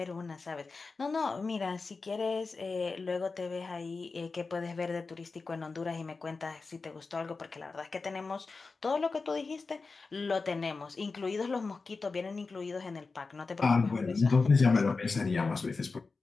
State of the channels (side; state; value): right; quieter; 4.2 dB